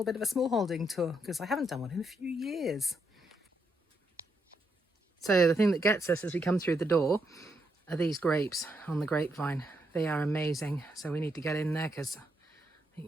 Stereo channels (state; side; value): normal; both; correlation 0.79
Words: bit of a smallholding tour because I haven't done one in a few years. So the thing that gets us as we come through the door are these grapes on the grapevine. They are amazing, so we need to get in there because I